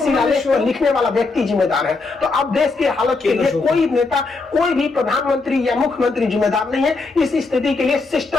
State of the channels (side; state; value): right; quieter; 3.8 dB